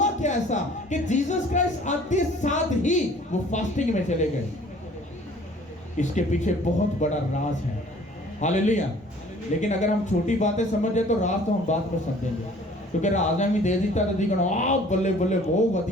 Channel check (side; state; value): both; normal; correlation 0.52